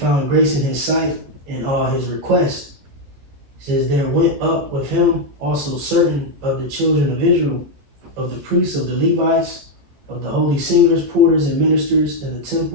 grace in his sight in all his requests. It says, There went up with him also certain of the children of Israel, of the priests, of the Levites, of the holy singers, porters, and ministers in the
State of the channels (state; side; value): late; left; 15 ms